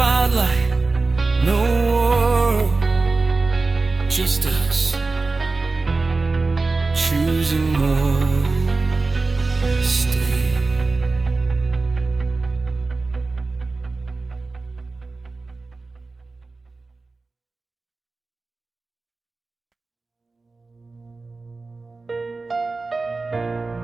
no world, just us choosing WarStay.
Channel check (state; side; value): quieter; left; 3.7 dB